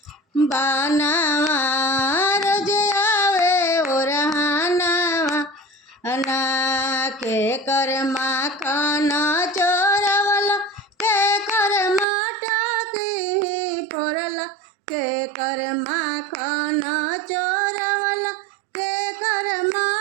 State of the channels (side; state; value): left; drops out; at 12.1 s